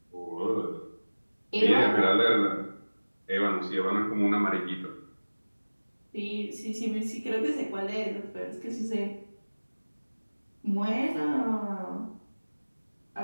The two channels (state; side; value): inverted; both; correlation -1.00